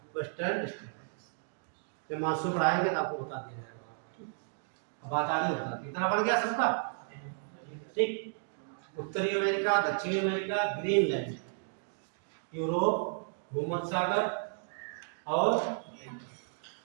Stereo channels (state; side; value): silent; left; digital silence